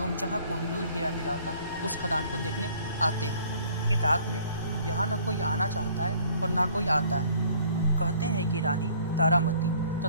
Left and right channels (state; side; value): inverted; both; correlation -0.56